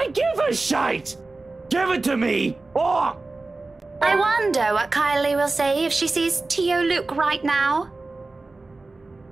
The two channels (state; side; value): quieter; left; 3.4 dB